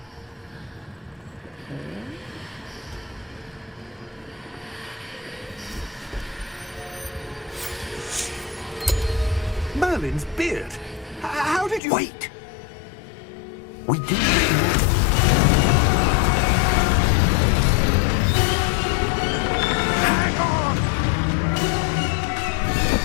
Merlin's beard! How did you... Wait! We do. Hang on!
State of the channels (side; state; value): right; drops out; at 11.8 s